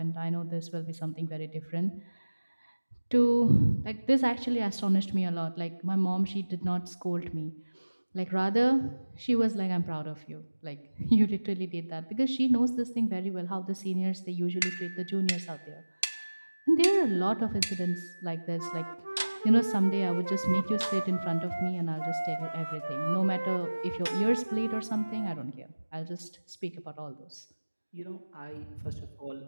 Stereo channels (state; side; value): inverted; both; correlation -1.00